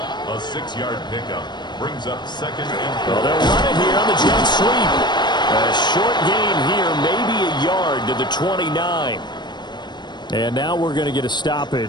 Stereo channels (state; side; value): late; right; 0.21 ms